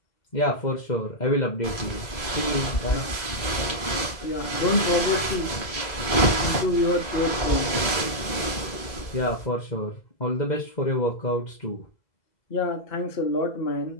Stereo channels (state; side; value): late; right; 2.0 ms